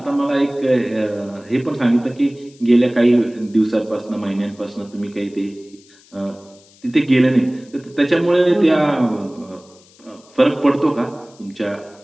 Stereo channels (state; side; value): noise; left; hiss, 28 dB below the sound